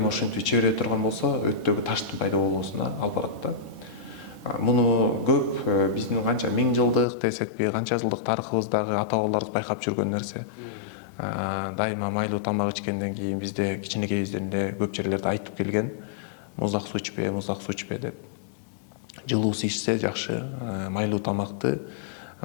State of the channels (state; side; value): drops out; right; at 7.1 s